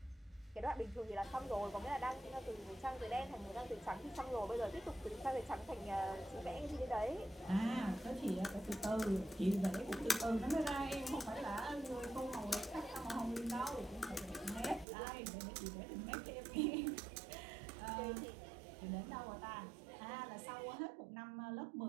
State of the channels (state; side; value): drops out; left; at 14.9 s